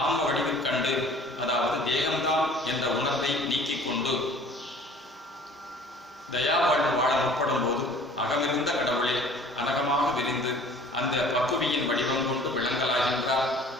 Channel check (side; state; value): both; normal; correlation 0.49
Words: ஆன்ம வடிவில் கண்டு, அதாவது தேகம்தான் என்ற உணர்வை நீக்கிக் கொண்டு தயா வாழ்வு வாழ முற்படும் போது அகமிருந்த கடவுளே அனகமாக விரிந்து அந்த பக்குவியின் வடிவம் கொண்டு விளங்கலாகின்றார்.